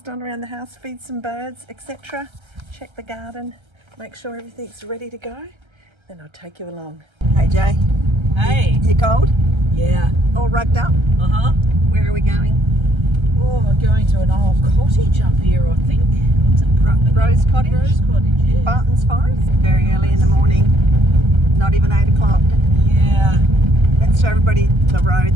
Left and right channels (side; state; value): left; late; 1.3 ms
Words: done around the house, feed some birds, etc. Check the garden, make sure everything's ready to go. Then I'll take you along. Hey Jay. Hey. You cold? Yeah. All rugged up? Uh-huh. Where are we going? Oh, we're going to an old cottage up here, I think. What's it? Rose Cottage? Rose Cottage, yeah. Bartons Forest? Very early in the morning. Not even 8 o'clock. Yeah. Let's show everybody the road